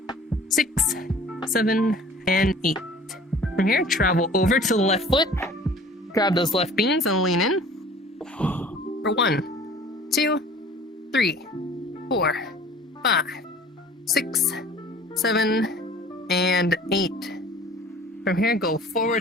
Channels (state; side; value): normal; both; correlation 0.48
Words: 6, 7, and 8. From here, travel over to the left foot. Grab those left beans and lean in. For 1, 2, 3, 4, 5, 6, 7, and 8. From here, go forward